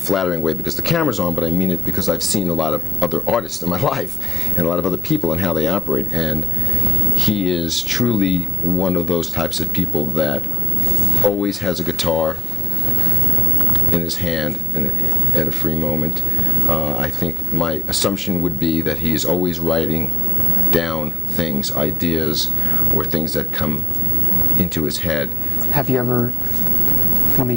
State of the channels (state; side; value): normal; both; correlation 0.82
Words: way because the camera's on, but I mean it because I've seen a lot of other artists in my life and a lot of other people and how they operate, and he is truly one of those types of people that always has a guitar in his hand at a free moment. I think my assumption would be that he is always writing down things, ideas, or things that come into his head. Have you ever, let me